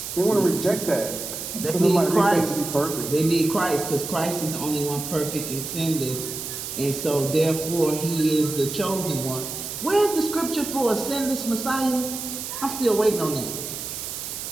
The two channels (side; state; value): right; noise; hiss, 7 dB below the sound